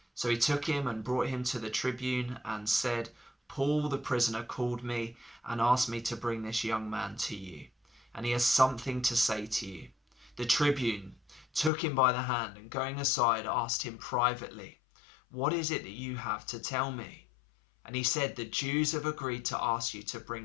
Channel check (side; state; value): right; drops out; at 11.7 s